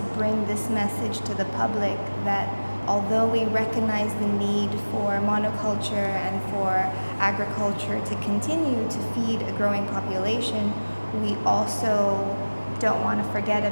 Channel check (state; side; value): inverted; both; correlation -1.00